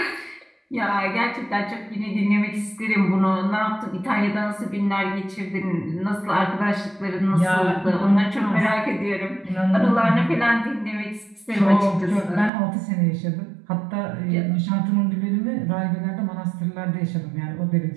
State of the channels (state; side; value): drops out; left; at 12.5 s